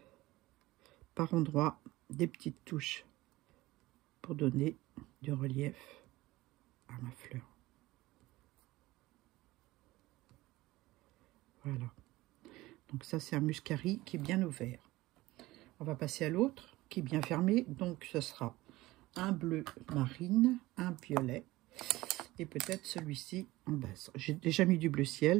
par endroits des petites touches. Pour donner du relief à ma fleur. Voilà. Donc ça, c'est un muscari qui est bien ouvert. On va passer à l'autre qui est bien fermé. Donc ce sera un bleu marine, un violet et peut-être celui-ci en base. J'ai déjà mis du bleu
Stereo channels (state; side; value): quieter; left; 18.6 dB